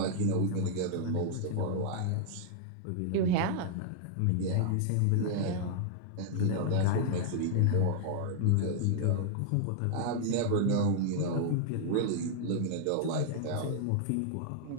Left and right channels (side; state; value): both; different; correlation 0.00